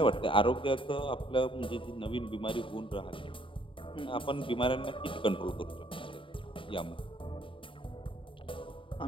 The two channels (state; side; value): late; right; 0.25 ms